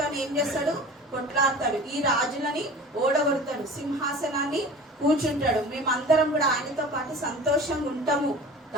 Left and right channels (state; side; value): normal; both; correlation 0.39